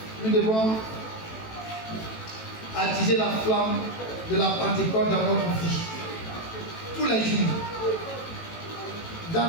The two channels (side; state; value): right; late; 18 ms